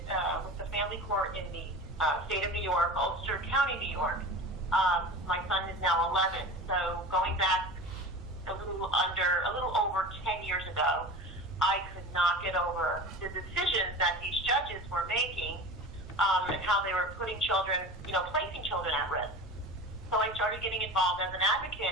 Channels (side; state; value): both; normal; correlation 0.33